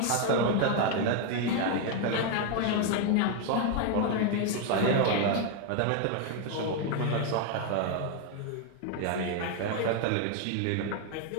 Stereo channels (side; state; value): both; different; correlation 0.01